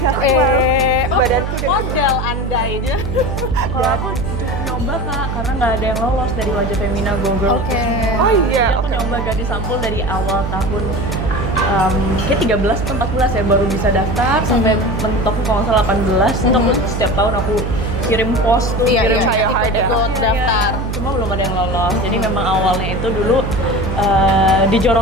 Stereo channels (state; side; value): noise; right; hum, 3 dB below the sound